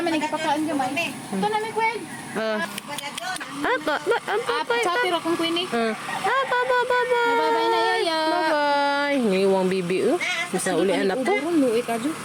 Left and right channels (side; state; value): both; identical; correlation 1.00